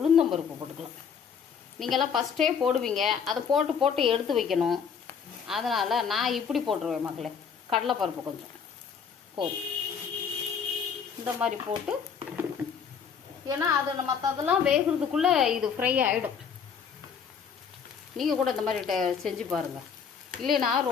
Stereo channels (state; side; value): quieter; right; 6.8 dB